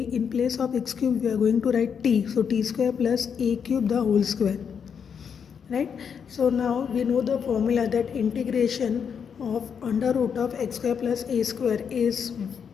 in place of x cube, we are going to write t, so t square plus a cube the whole square, right? So now we know the formula that integration of under root of x square plus a square is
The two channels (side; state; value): right; quieter; 7.1 dB